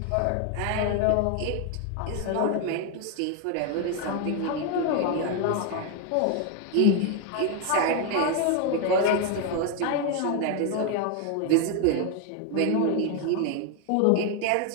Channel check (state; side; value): different; both; correlation 0.01